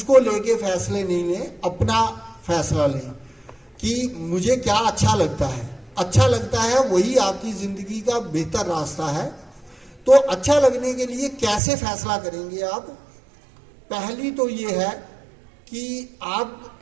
लेके फैसले नहीं लें। अपना फैसला लें कि मुझे क्या अच्छा लगता है। अच्छा लगता है वही आपकी जिंदगी का बेहतर रास्ता है। तो अच्छा लगने के लिए कैसे फैसला करेंगे आप? पहली तो ये है कि आप,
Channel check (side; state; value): left; drops out; at 11.6 s